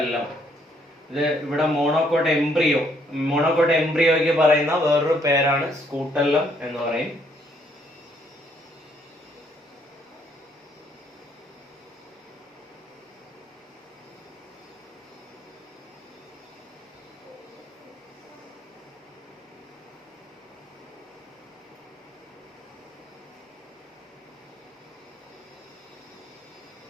ഇത് ഇവിടെ മോണോകോട്ട് എംബ്രിയോയ്ക്ക് പറയുന്ന വേറൊരു പേരാണ് സ്കൂട്ടെല്ലം എന്ന് പറയും.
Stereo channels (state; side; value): normal; both; correlation 0.68